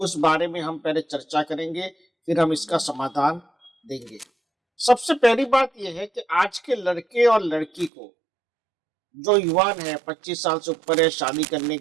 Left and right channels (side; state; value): left; drops out; at 7.9 s